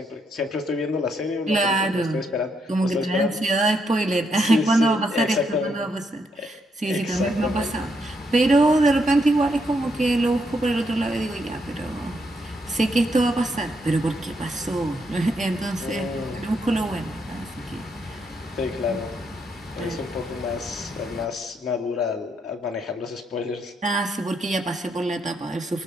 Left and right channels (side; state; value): both; normal; correlation 0.77